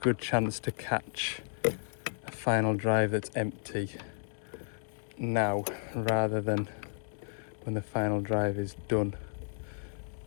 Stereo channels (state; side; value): silent; right; digital silence